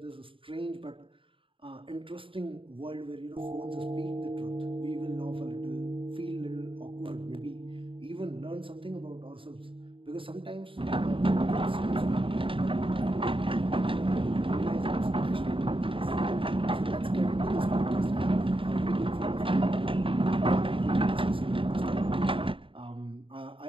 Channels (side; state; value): left; late; 0.25 ms